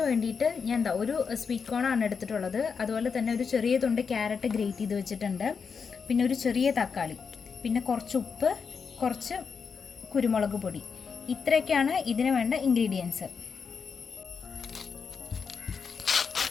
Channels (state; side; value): quieter; right; 5.8 dB